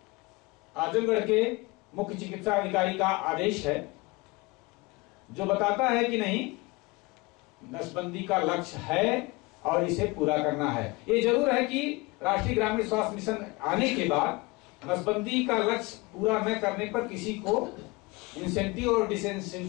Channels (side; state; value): right; quieter; 24.3 dB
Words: आजमगढ़ के मुख्य चिकित्सा अधिकारी का आदेश है जो बताता है कि नहीं, नसबंदी का लक्ष्य है और इसे पूरा करना है। ये जरूर है कि राष्ट्रीय ग्रामीण स्वास्थ्य मिशन आने के बाद नसबंदी का लक्ष्य पूरा न करने पर किसी को इंसेंटिव और